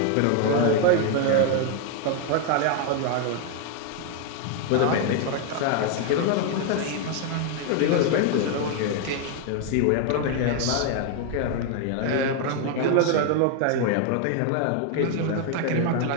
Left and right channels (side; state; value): both; different; correlation 0.00